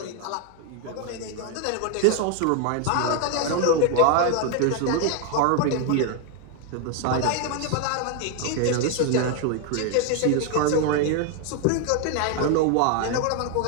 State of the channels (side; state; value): both; different; correlation 0.01